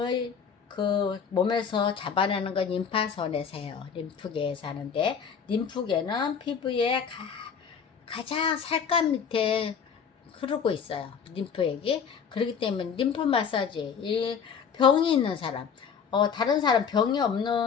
그 몸에서 잡아내는 건 림파선에서요. 림프계에서 하는데, 림프계는 피부의 가장 살감 밑에 흐르고 있어요. 림프액이. 그렇기 때문에 림프 마사지, 이 병이 있는 사람, 다른 사람 병이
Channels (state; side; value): quieter; right; 6.8 dB